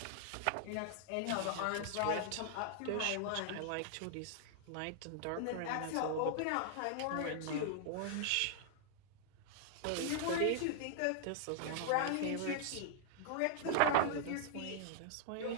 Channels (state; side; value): different; both; correlation -0.01